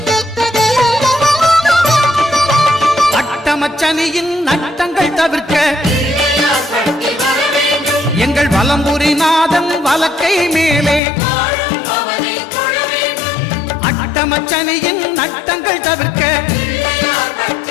அட்டமச்சனியின் நட்டங்கள் தவிர்க்க எங்கள் வலம்புரி நாதன் வலக்கை மேலே அட்டமச்சனியின் நட்டங்கள் தவிர்க்க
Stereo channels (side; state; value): right; drops out; at 11.0 s